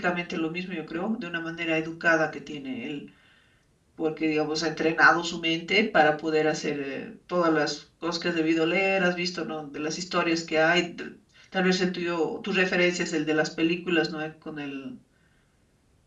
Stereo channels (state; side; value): identical; both; correlation 1.00